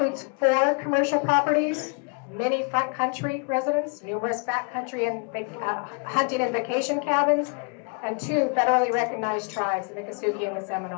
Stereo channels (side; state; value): right; quieter; 34.8 dB